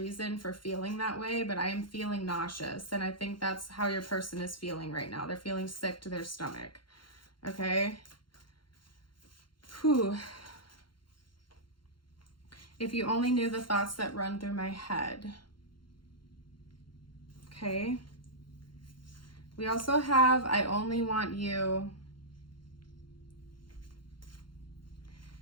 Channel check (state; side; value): late; right; 0.72 ms